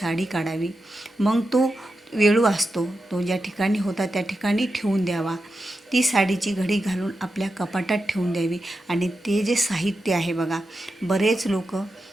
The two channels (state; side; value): normal; both; correlation 0.89